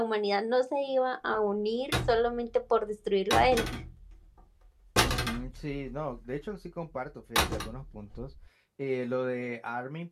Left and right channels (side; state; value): both; identical; correlation 1.00